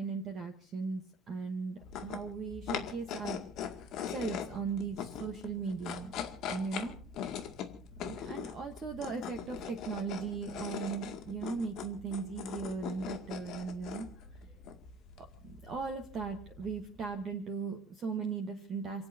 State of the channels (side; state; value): both; normal; correlation 0.47